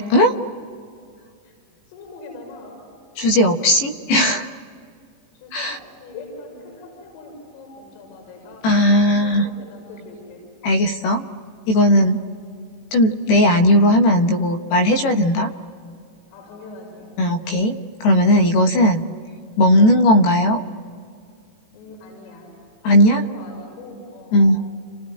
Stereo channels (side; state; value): right; late; 18 ms